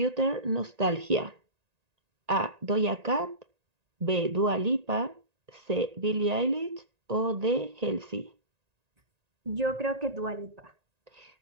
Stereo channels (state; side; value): late; left; 1.9 ms